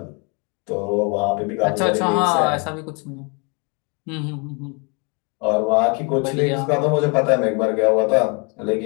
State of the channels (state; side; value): quieter; right; 33.5 dB